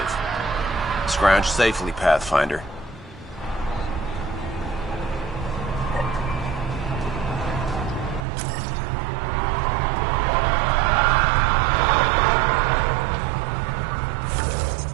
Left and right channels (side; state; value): left; drops out; at 8.2 s